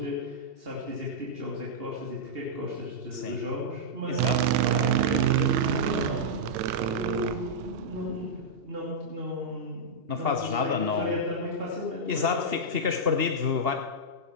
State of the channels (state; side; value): late; left; 2.8 ms